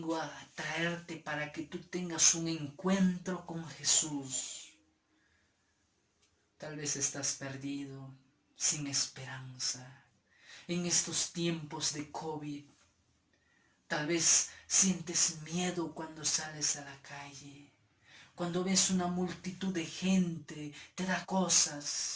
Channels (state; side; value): identical; both; correlation 1.00